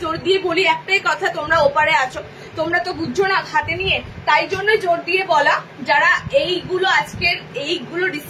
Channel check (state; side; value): identical; both; correlation 1.00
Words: জোর দিয়ে বলি একটাই কথা, তোমরা ওপারে আছো, তোমরা তো বুঝছো না হাতে নিয়ে, তাই জন্য জোর দিয়ে বলা। যারা এইগুলো আজকের এইগুলো